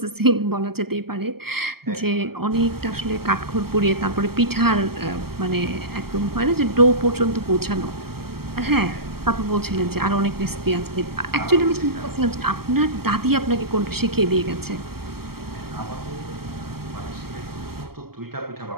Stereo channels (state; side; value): late; left; 0.95 ms